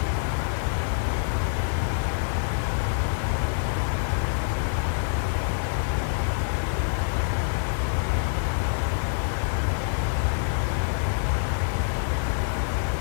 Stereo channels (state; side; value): silent; right; digital silence